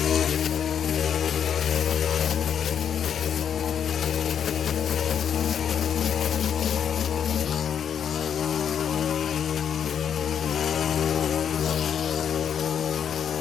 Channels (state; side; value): quieter; right; 8.3 dB